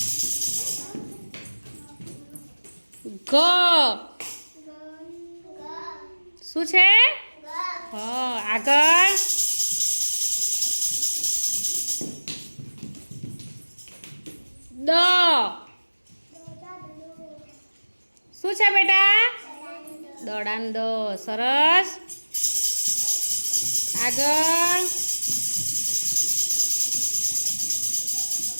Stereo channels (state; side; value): inverted; both; correlation -1.00